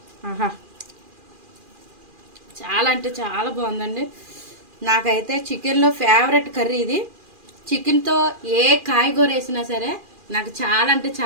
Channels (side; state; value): left; late; 2.4 ms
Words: ఆహా, చాలా అంటే చాలా బాగుందండి. నాకైతే చికెన్లో ఫేవరెట్ కర్రీ ఇది. చికెన్తో ఏ కాయగూర వేసినా సరే నాకు చాలా అంటే